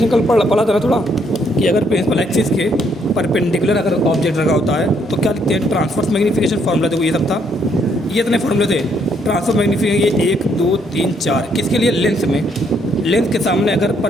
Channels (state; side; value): normal; both; correlation 0.71